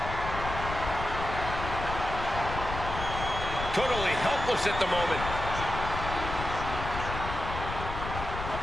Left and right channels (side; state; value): left; noise; rumble, 6 dB below the sound